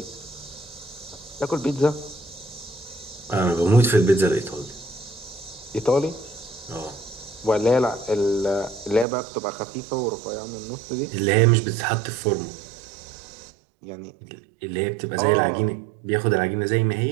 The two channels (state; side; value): drops out; left; at 9.1 s